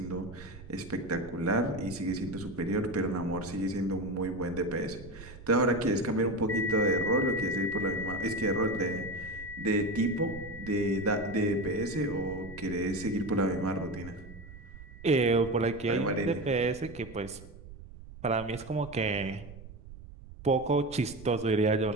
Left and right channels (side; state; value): right; noise; rumble, 16 dB below the sound